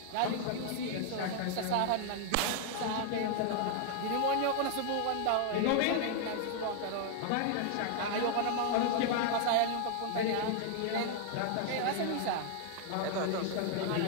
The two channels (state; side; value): different; both; correlation 0.00